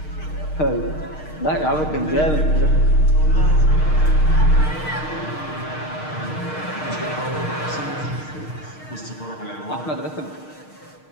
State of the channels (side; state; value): right; late; 6.5 ms